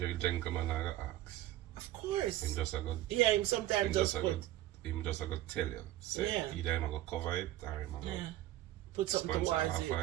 gentleman I ask. Of course. Him just a go. Yeah, him sometimes just put Him just a go tell you. Say Yeah. either him a go cover it or him a go put something sponsor towards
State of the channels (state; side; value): quieter; left; 14.8 dB